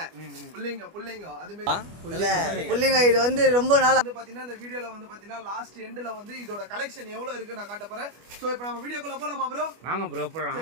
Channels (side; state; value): left; late; 25 ms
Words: புல்லிங்க அது இல்ல மாதிரி புள்ளிங்க இது வந்து ரொம்ப நாள் வந்து பாத்தீங்கன்னா இந்த வீடியோல வந்து பாத்தீங்கன்னா லாஸ்ட் எண்ட்ல வந்து இதோட கலெக்ஷன் எவ்வளவு இருக்கு நான் காட்ட போறேன். சோ இப்போ நம்ம வீடியோக்குள்ள போலாமா ப்ரோ? வாங்க ப்ரோ போலாம்.